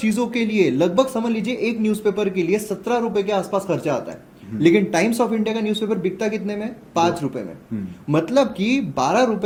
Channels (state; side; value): identical; both; correlation 1.00